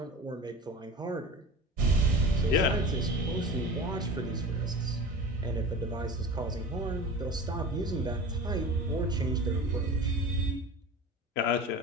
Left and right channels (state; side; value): normal; both; correlation 0.34